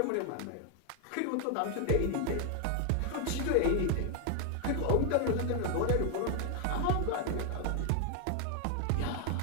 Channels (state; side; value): different; both; correlation 0.00